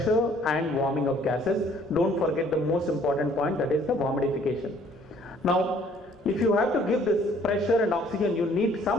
and warming of gases. Don't forget the most important point, that is the humidification. Now, if you have to give this pressure and oxygen, you need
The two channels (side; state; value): both; normal; correlation 0.59